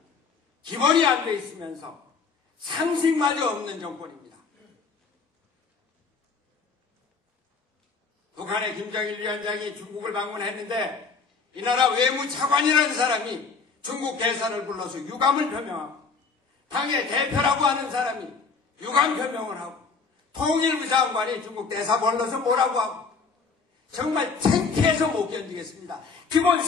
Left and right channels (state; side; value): quieter; right; 4.9 dB